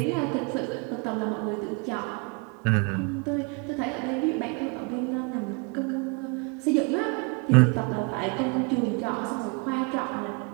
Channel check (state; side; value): quieter; left; 32.4 dB